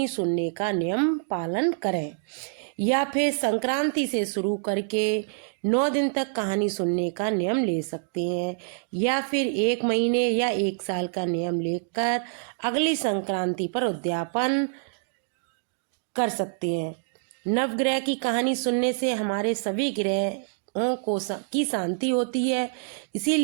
सुनने का नियम पालन करें या फिर संक्रांति से शुरू करके 9 दिन तक कहानी सुनने का नियम ले सकते हैं या फिर 1 महीने या 1 साल का नियम लेकर अगली संक्रांति पर उद्यापन कर सकते हैं। नवग्रह की कहानी सुनने से हमारे सभी ग्रहों की शांति होती है,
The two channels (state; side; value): silent; left; digital silence